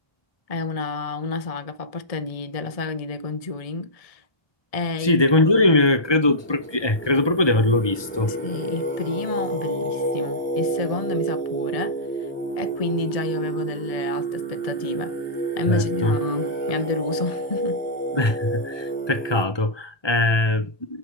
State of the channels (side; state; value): right; late; 1.2 ms